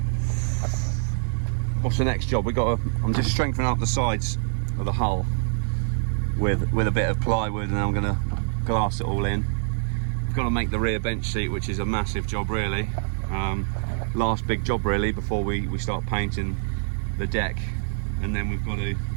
what's the next job? I'm just strengthening up the sides of the hull with a bit of plywood, and then I'm going to glass it all in. I've got to make the rear bench seat, which is a massive job really. Last big job really before we start painting the deck, and then we've got to,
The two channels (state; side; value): silent; left; 62 dB below the other